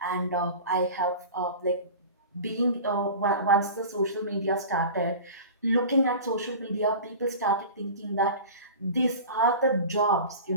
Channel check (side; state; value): both; inverted; correlation -0.36